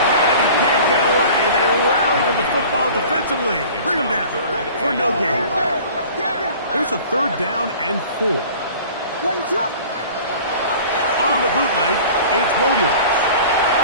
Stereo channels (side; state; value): both; inverted; correlation -0.44